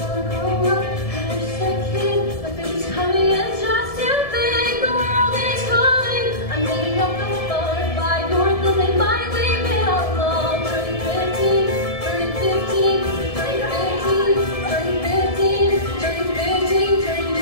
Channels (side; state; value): right; late; 1.7 ms